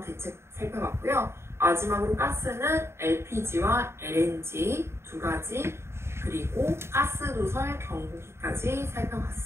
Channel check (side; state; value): left; late; 0.12 ms